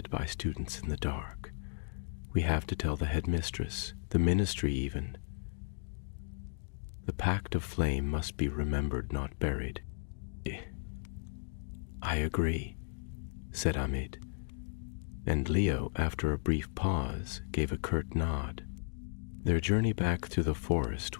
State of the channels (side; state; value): right; silent; digital silence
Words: by students in the dark. We have to tell the headmistress, the ministry even. The pact of flame must be remembered, not buried." "I agree," said Amit, and Leo, after a brief pause, gave a curt nod. Their journey back through the